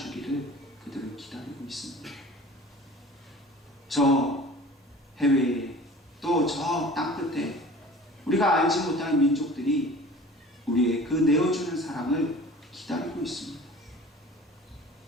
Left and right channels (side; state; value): both; normal; correlation 0.43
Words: 그들은 기다리고 있습니다. 저 해외에 또 저 땅끝에 우리가 알지 못하는 민족들이 우리의 그 내어주는 사랑을 기다리고 있습니다.